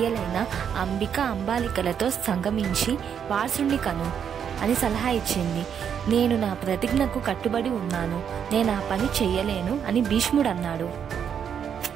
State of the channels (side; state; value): left; quieter; 8.0 dB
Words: అంబిక, అంబాలికలతో సంగమించి వారసుని కను అని సలహా ఇచ్చింది. నేను నా ప్రతిజ్ఞకు కట్టుబడి ఉన్నాను. నేను ఆ పని చెయ్యలేను అని భీష్ముడు అన్నాడు.